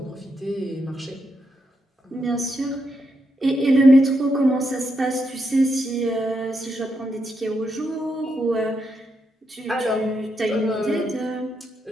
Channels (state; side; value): normal; both; correlation 0.81